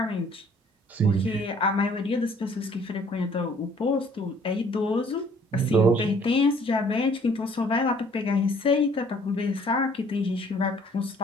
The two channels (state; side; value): normal; both; correlation 0.58